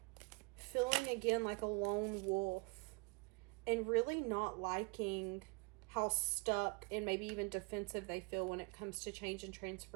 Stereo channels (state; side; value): quieter; left; 30.0 dB